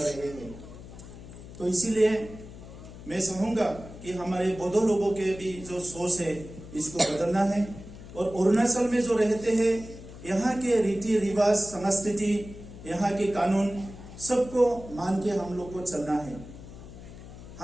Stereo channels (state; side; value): noise; left; hum, 15 dB below the sound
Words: रहे हैं। तो इसीलिए मैं चाहूंगा कि हमारे बोडो लोगों के भी जो सोच है इसको बदलना है, और अरुणाचल में जो रहते हैं यहाँ के रीति रिवाज, संस्कृति, यहाँ के कानून सबको मान के हम लोग को चलना है।